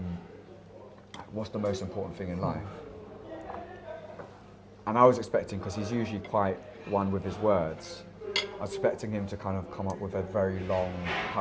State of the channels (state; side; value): identical; both; correlation 1.00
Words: what's the most important thing in life? And I was expecting, because he's usually quite one with his words, I was expecting him to kind of come up with a very long